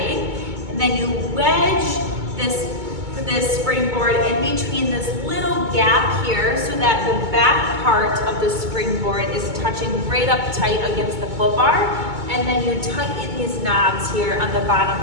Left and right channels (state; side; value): late; left; 2.2 ms